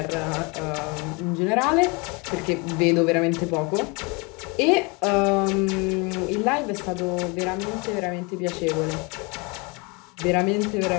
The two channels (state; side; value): quieter; right; 29.4 dB